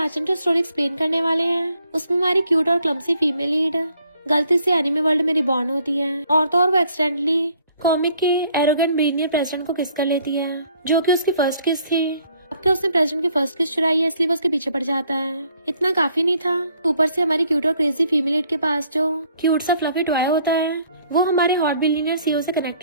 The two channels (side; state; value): both; inverted; correlation -0.64